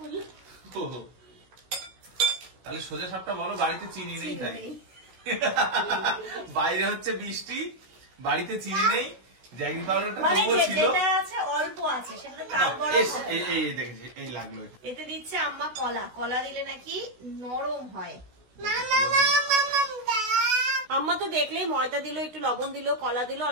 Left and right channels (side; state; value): left; late; 16 ms